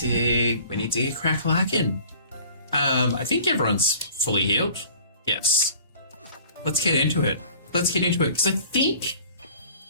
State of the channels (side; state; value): both; inverted; correlation -0.48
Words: get crack-lacking. I think everyone's fully healed. Yes. Let's get into it. Because I think